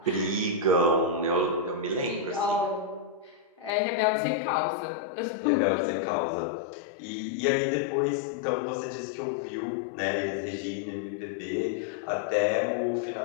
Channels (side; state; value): right; drops out; at 3.7 s